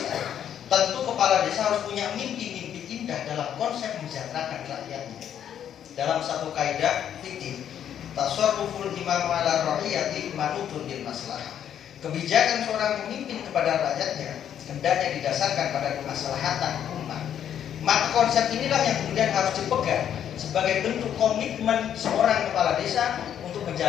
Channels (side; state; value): right; quieter; 9.6 dB